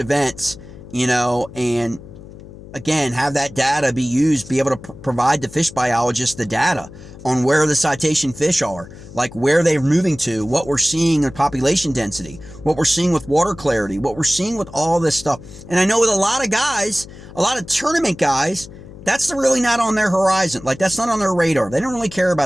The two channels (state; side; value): noise; left; hum, 17 dB below the sound